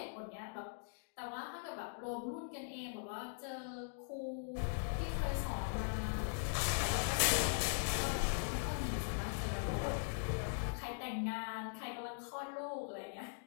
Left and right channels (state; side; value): silent; right; digital silence